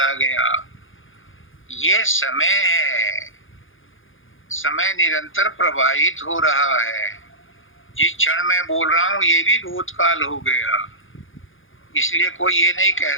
गया। ये समय है, समय निरंतर प्रवाहित हो रहा है। जिस क्षण मैं बोल रहा हूं ये भी भूतकाल हो गया। इसलिए कोई ये नहीं कह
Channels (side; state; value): right; late; 0.58 ms